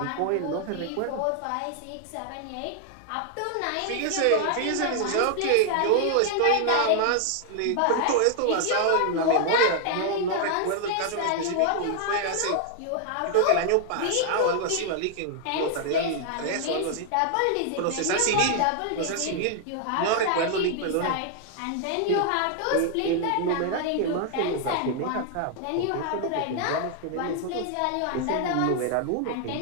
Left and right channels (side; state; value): both; different; correlation 0.00